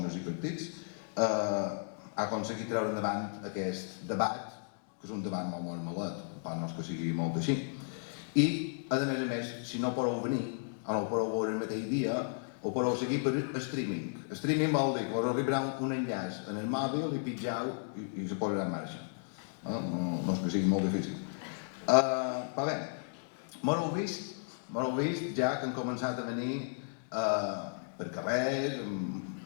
i partits, ha aconseguit treure endavant aquest debat, que és un debat molt malet, per no és que sigui molt així. I, a més, si no podeu venir, o no ho podeu veure el mateix dia, ho podeu seguir per streaming. Streaming vol dir que us arribarà un enllaç en el mòbil i pitjau i se posarà en marxa. No és que sigui molt difícil. Però bé, m'ho heu vist ja que han començat a venir per carrers,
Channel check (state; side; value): silent; right; digital silence